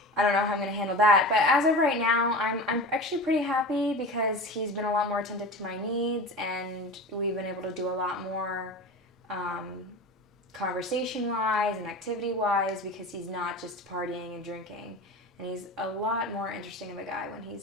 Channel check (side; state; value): both; normal; correlation 0.31